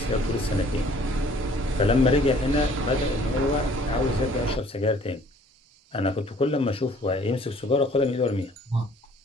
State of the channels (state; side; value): normal; both; correlation 0.56